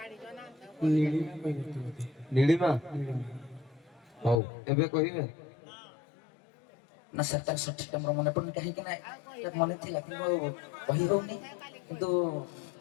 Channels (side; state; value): right; drops out; at 4.4 s